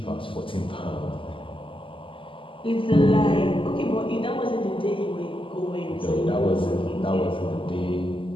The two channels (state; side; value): late; right; 0.25 ms